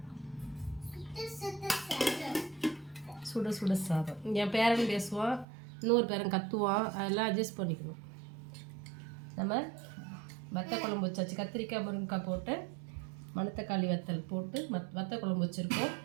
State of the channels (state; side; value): drops out; left; at 5.5 s